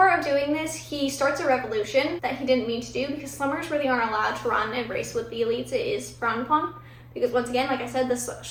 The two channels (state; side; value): identical; both; correlation 1.00